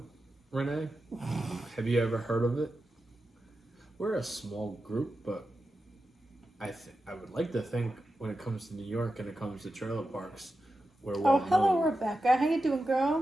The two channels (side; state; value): both; normal; correlation 0.91